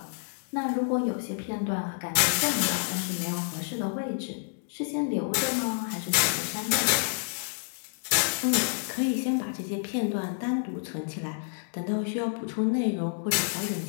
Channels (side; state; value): right; silent; digital silence